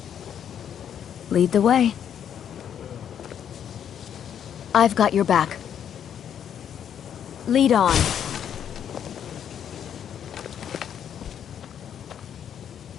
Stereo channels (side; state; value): right; quieter; 9.0 dB